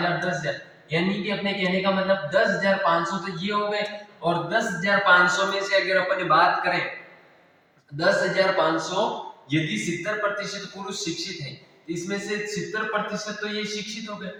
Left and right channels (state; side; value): identical; both; correlation 1.00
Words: 10,000, यानी कि अपने कहने का मतलब 10,500 तो ये हो गए। और 10,500 में से अगर अपन बात करें, 10,500 यदि 70% पुरुष शिक्षित है, इसमें से 70% तो ये शिक्षित हो गए।